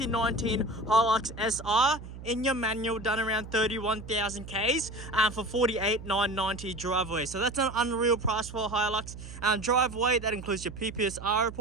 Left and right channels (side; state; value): right; noise; hum, 13 dB below the sound